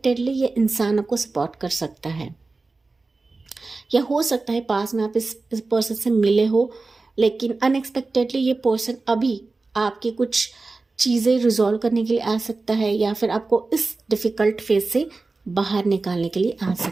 ये इंसान आपको सपोर्ट कर सकता है, या हो सकता है पास में आप इस पर्सन से मिले हो लेकिन अनएक्सपेक्टेडली ये पर्सन अभी आपकी कुछ चीज़ें रिजॉल्व करने के लिए आ सकता है या फिर आपको इस डिफ़िकल्ट फेज से बाहर निकालने के लिए आ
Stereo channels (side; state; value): left; quieter; 3.6 dB